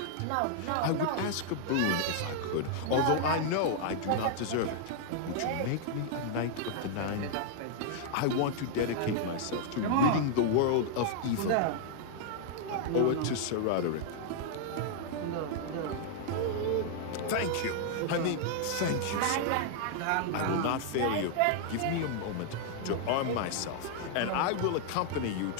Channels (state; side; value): different; both; correlation -0.01